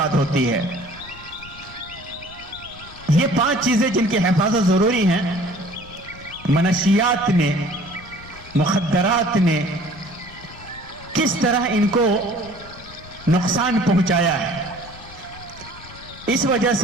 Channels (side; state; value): left; noise; rumble, 19 dB below the sound